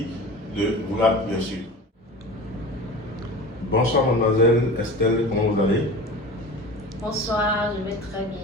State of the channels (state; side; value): normal; both; correlation 0.35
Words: de vous la bien sûr. Bonsoir mademoiselle Estelle, comment vous allez? Bonsoir, je vais très bien